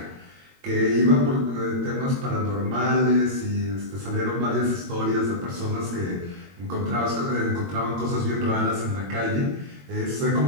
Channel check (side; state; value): left; late; 22 ms